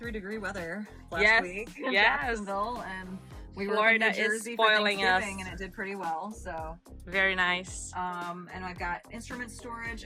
weather last week in Jacksonville, and we were in New Jersey for Thanksgiving, and it did pretty well. So very nice. And I've got instrument storage,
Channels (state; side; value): identical; both; correlation 1.00